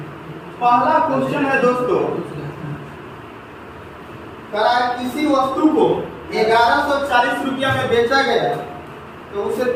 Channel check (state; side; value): identical; both; correlation 1.00